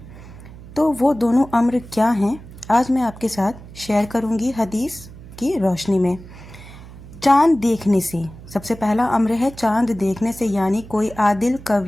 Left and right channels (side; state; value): right; noise; hum, 17 dB below the sound